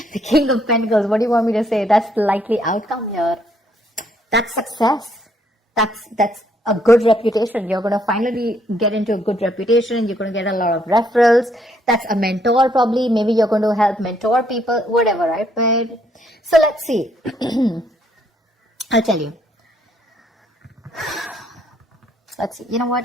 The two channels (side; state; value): both; normal; correlation 0.70